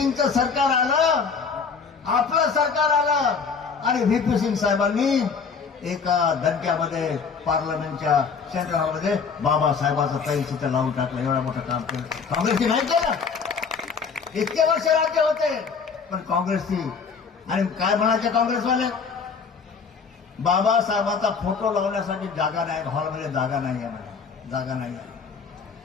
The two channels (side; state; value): right; quieter; 5.6 dB